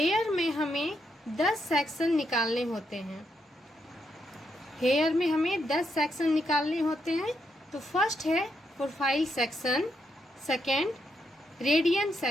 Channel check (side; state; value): both; normal; correlation 0.80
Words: में हमें 10 सेक्शन निकालने होते हैं। हेयर में हमें 10 सेक्शन निकालने होते हैं। तो फर्स्ट है profile section, second radian